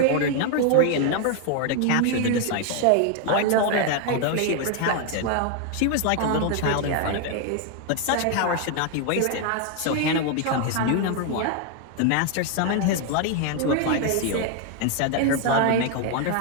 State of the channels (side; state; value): both; different; correlation 0.01